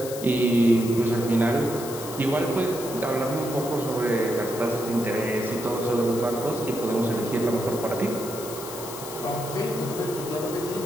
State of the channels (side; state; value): left; noise; hiss, 11 dB below the sound